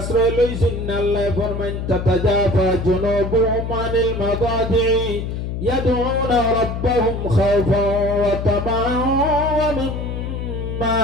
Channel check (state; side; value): noise; left; hum, 4 dB below the sound